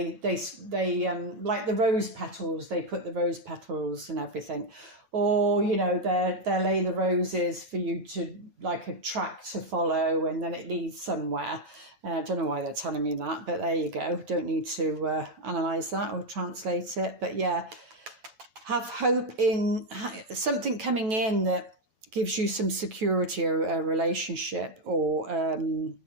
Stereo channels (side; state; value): left; late; 9.2 ms